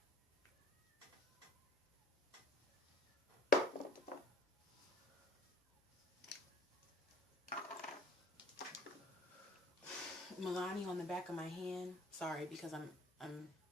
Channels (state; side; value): normal; both; correlation 0.52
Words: Milani on the back of my hand. Sorry, because I'm